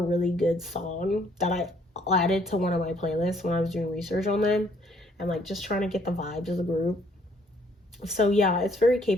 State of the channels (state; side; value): normal; both; correlation 0.64